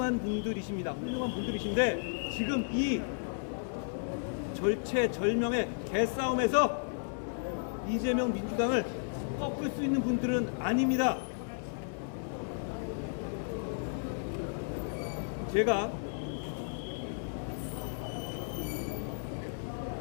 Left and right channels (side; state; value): right; silent; digital silence